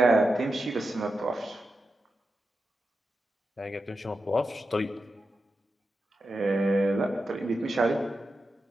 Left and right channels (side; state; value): both; normal; correlation 0.89